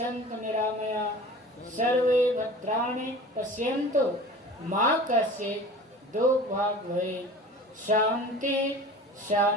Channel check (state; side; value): normal; both; correlation 0.40